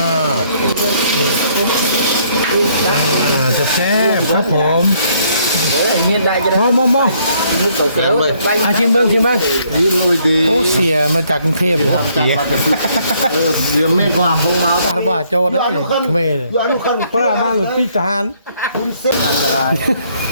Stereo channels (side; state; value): both; inverted; correlation -0.67